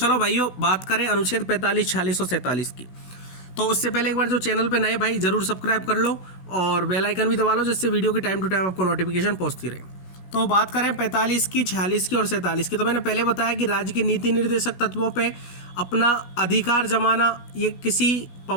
भाइयों, बात करें अनुच्छेद 45, 46 और 47 की। तो उससे पहले एक बार जो चैनल पे नए भाई जरूर सब्सक्राइब कर लो और बेल आइकन भी दबा लो, जिससे वीडियो की टाइम टू टाइम आपको नोटिफिकेशन पहुंचती रहे। तो बात करें 45 की, 46 की और 47 की। तो मैंने पहले बताया कि राज्य के नीति निर्देशक तत्वों पे अपना अधिकार जमाना ये किसी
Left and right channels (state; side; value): late; right; 16 ms